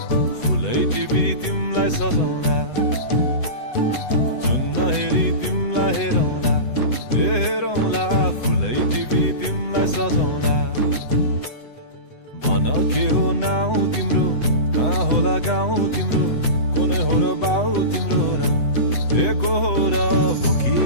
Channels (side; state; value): right; late; 7.9 ms